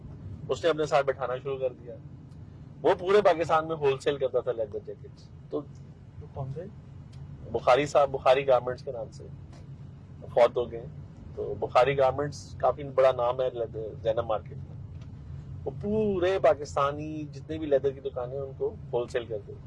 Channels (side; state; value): both; identical; correlation 1.00